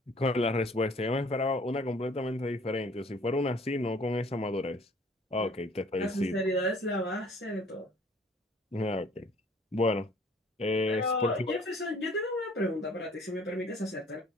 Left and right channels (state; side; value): normal; both; correlation 0.55